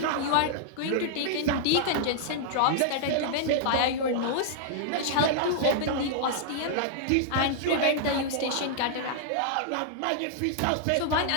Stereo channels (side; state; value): both; different; correlation -0.01